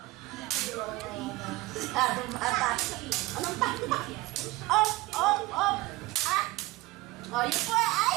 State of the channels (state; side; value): quieter; left; 19.8 dB